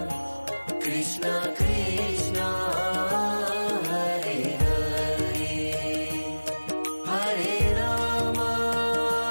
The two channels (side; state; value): both; inverted; correlation -1.00